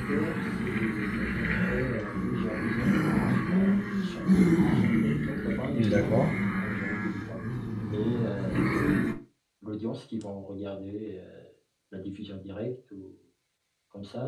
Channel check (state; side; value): identical; both; correlation 1.00